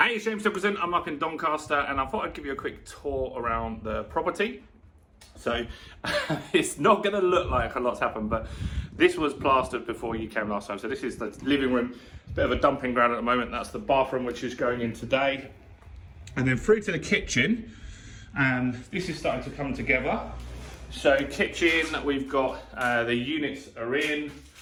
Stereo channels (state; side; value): identical; both; correlation 1.00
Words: Hey, it's James Nicholson. I'm up in Doncaster and I thought I'd give you a quick tour around the property. So it's not going to look like a lot's happened, but this was plastered before you came last time. So this is the living room, bit of a dumping ground at the moment. That's the bathroom, which is going in today. And then through to the kitchen, and this is starting to come together. So kitchen, we've got the units are in,